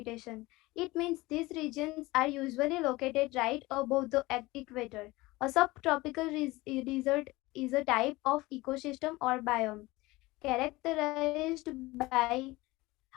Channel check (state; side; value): quieter; right; 20.7 dB